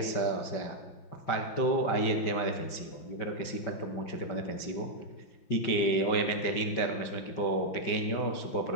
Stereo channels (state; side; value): late; right; 5.7 ms